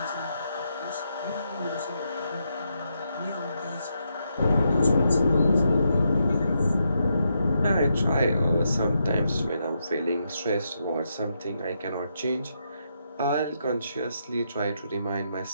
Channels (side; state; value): both; inverted; correlation -0.81